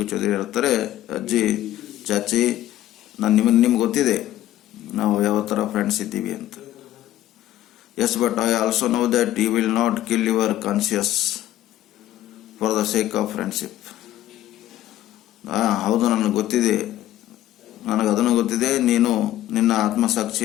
Chaudhary ಹೇಳ್ತಾರೆ, ಅಜ್ಜಿ ಚಾಚಿ ನಿಮ್ಗೆ ಗೊತ್ತಿದೆ ನಾವು ಯಾವ ಥರ ಫ್ರೆಂಡ್ಸ್ ಇದ್ದೀವಿ ಅಂತ. Yes, but I also know that you will not kill your conscience for the sake of friendship. ಹೌದು, ನನಗೆ ಗೊತ್ತಿದೆ, ಅದನ್ನು ಗೊತ್ತಿದೆ, ನೀನು ನಿನ್ನ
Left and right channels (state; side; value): quieter; right; 13.7 dB